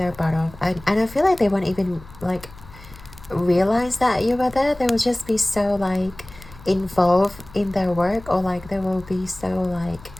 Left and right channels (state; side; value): noise; left; hum, 20 dB below the sound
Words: butt off, and I feel like they won't even like realize that you were there. They will just be so like involved in their work, or like they will be so like